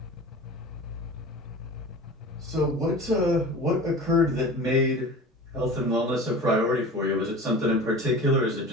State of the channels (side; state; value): both; normal; correlation 0.36